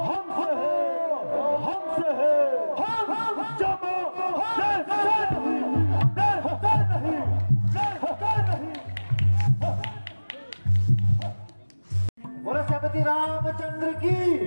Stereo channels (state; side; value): inverted; both; correlation -1.00